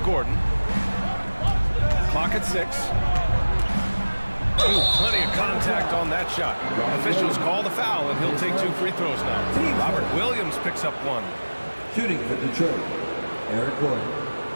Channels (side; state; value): both; inverted; correlation -1.00